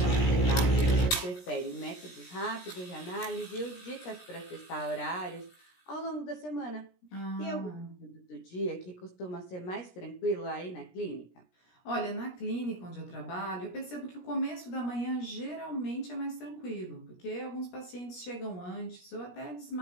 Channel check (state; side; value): late; right; 17 ms